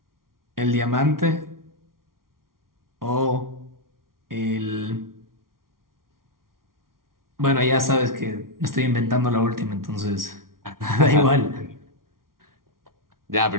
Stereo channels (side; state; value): left; late; 0.92 ms